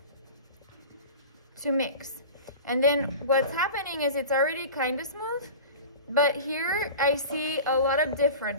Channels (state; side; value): inverted; both; correlation -0.35